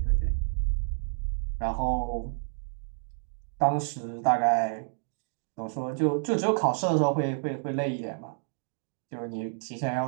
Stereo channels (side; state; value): left; silent; digital silence